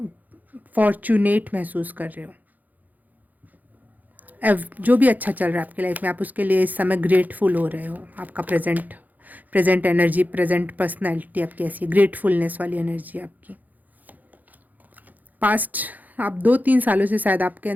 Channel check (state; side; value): late; left; 0.082 ms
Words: फॉर्चुनेट महसूस कर रहे हो। जो भी अच्छा चल रहा है आपकी लाइफ में, आप उसके लिए इस समय ग्रेटफुल हो रहे हो। आपका प्रेजेंट एनर्जी, प्रेजेंट पर्सनैलिटी आपकी ऐसी ग्रेटफुलनेस वाली एनर्जी आपकी। पास्ट आप 2-3 सालों से शायद आपके